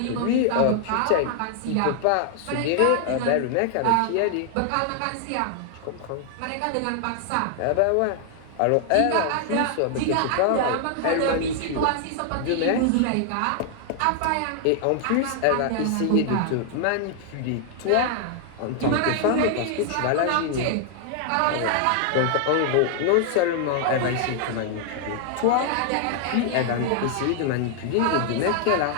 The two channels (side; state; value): both; different; correlation 0.00